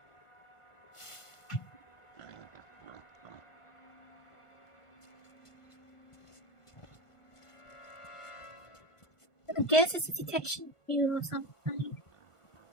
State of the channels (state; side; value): late; right; 1.5 ms